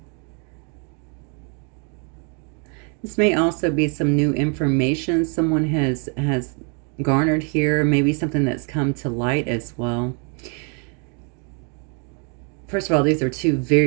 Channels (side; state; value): left; quieter; 37.6 dB